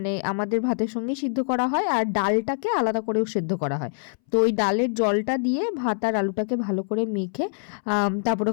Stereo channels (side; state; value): right; silent; 62 dB below the other